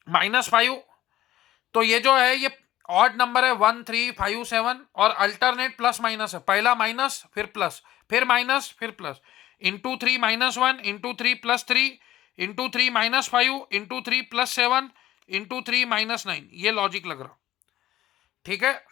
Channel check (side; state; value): right; quieter; 14.0 dB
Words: minus 5, तो ये जो है ये ऑड नंबर है 1 3 5 7, और अल्टरनेट प्लस माइनस है, पहला माइनस फिर प्लस फिर माइनस फिर plus, into 3 minus 1 into 3 plus 3 into 3 minus 5 into 3 plus 7 into 3 minus 9, ये लॉजिक लग रहा, ठीक है।